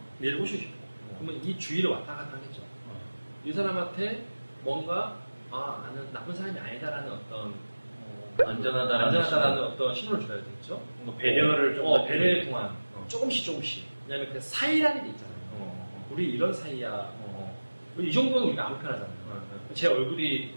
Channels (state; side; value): inverted; both; correlation -1.00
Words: 얘를 꼬시고 싶어. 그러면 이 주위를 왔다 갔다 하겠죠. 이 사람한테 뭔가 나는 나쁜 사람이 아니다라는 어떤 안전하다라는 어떤 신호를 줘야 되겠죠. 뭔가 배려를 좀 배려를 통한 조금씩. 왜냐면 그 사이라는 게 있잖아요. 우리 이런 사이야. 이 정도는 우리가 아무 편하잖아요. 제 얼굴이